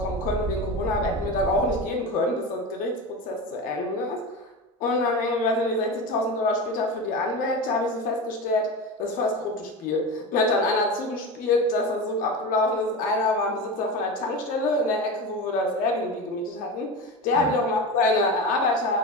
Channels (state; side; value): normal; both; correlation 0.24